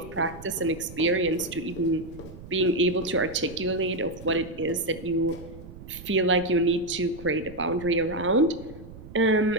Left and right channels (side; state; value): right; noise; rumble, 16 dB below the sound